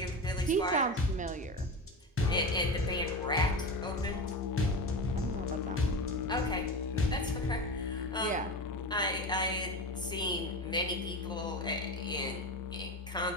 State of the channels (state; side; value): normal; both; correlation 0.24